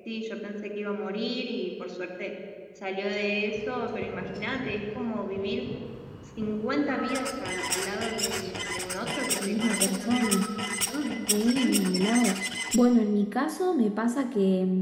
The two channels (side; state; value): both; identical; correlation 1.00